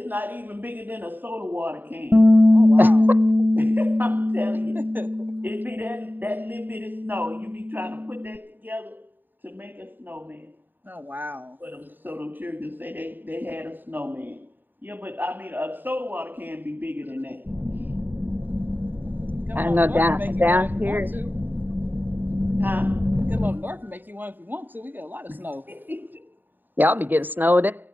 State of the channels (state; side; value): late; left; 0.091 ms